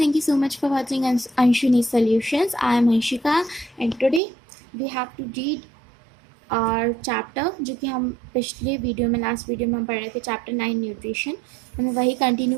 you so much for watching Anshuni Solutions. I am Anshika and today we have to read our chapter जो कि हम पिछले video में last video में हम पढ़ रहे थे चैप्टर 9 न्यूट्रिशन. हमें वही कंटिन्यू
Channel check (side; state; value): left; drops out; at 4.2 s